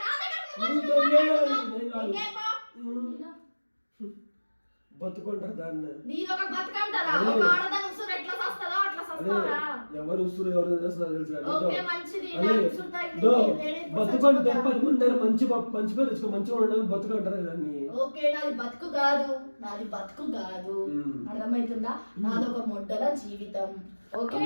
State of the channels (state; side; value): inverted; both; correlation -1.00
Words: నా దగ్గర నువ్వు నువ్వు వచ్చి దెంగే. మాట్లాడుతున్నావు. దెంగే పో. బతుకుంటారు దాన్ని. నీదొక బతుకంటారా? అదే. ఒక ఆడదాని ఉసురు ఎట్లా సస్తదో అట్లా సస్తారా? ఎవరు ఉసురు ఎవరు చేస్తారో తెలుసు కానీ ఓకే, మంచిది. అదే. నాకు ఉసురు తగిలింది. దో, లేడీస్ బతుకుంటే చచ్చిపోతారు. 10 మంది దగ్గర మంచి పేరు తెచ్చుకో, మంచిగా ఉండడం బతుకుంటారు దాన్ని. ఓకే, నాది బతుకు కాదు, నాది బతుకు కాదు. అర్థమవుతుందా? నాదొక మొడ్డల జీవితం. ఓకే